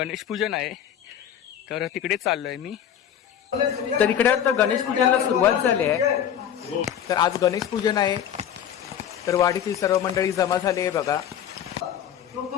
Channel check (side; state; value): right; quieter; 9.5 dB